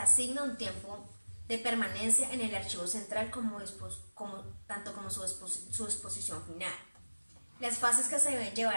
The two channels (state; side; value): inverted; both; correlation -1.00